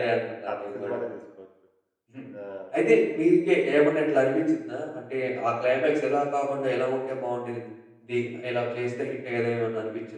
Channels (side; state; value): both; identical; correlation 1.00